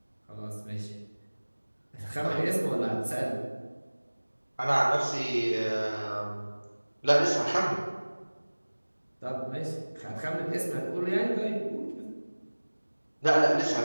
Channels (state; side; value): inverted; both; correlation -1.00